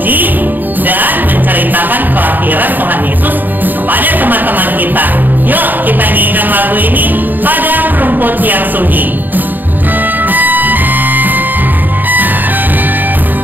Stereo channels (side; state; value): left; late; 0.089 ms